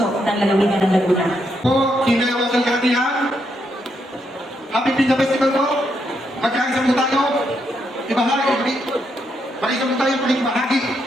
ng lalawigan ng Laguna. Po, kinayawang kalkatihan. Happy Pizza Festival po. Magkaisa mo tayo. Ibahagi. Mag-isa mo tayo pakibahagi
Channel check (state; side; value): normal; both; correlation 0.79